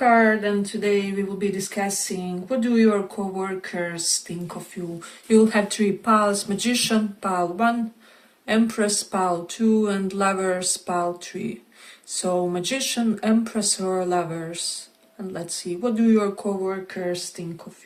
and today we will be discussing what do your co-workers think of you. You'll have three piles: Magician, pile 1, Empress, pile 2, and Lovers, pile 3. So Magician, Empress, or Lovers. And let's see, what do your co-workers think of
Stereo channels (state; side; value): identical; both; correlation 1.00